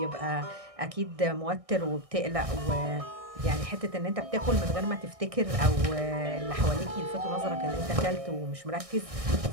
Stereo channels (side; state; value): left; late; 1.6 ms